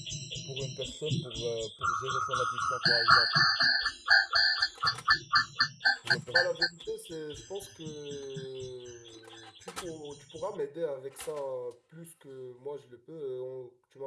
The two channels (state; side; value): identical; both; correlation 1.00